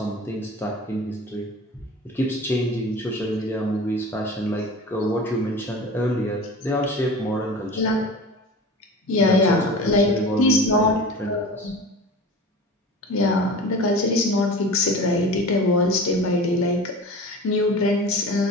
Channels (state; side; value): normal; both; correlation 0.36